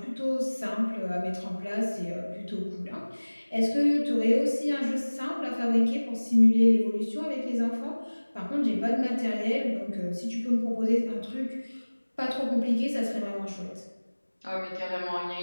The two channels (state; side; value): inverted; both; correlation -1.00